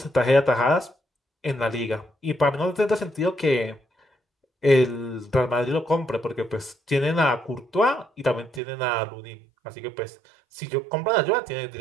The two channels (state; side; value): drops out; left; at 8.6 s